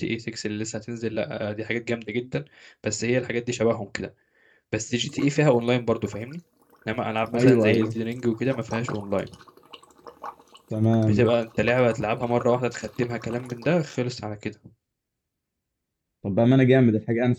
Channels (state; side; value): identical; both; correlation 1.00